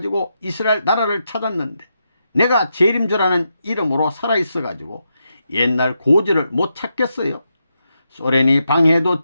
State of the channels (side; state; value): both; inverted; correlation -0.85